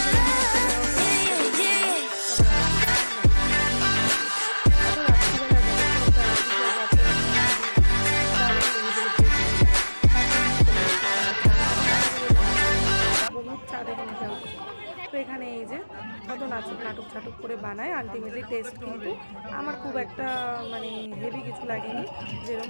love. Yeah, yeah, yeah. তো এখানে এই যে কত নাটক করে বানায়, ultimately test কিন্তু আমার খুব একটা মানে হেভি কিছু লাগেনি, যেরকম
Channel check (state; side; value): inverted; both; correlation -1.00